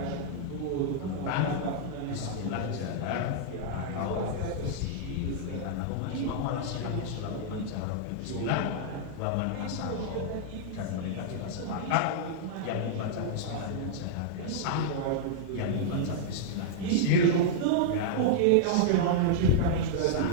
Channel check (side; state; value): both; different; correlation -0.01